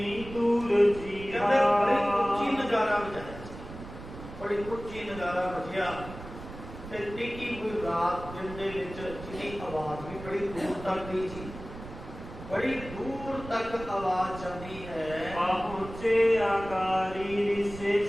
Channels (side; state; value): right; noise; rumble, 13 dB below the sound